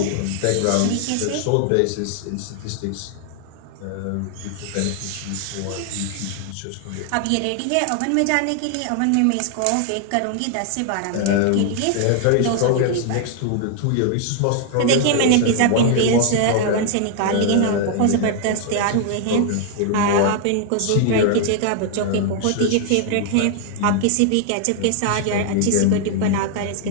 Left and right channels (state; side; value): different; both; correlation 0.00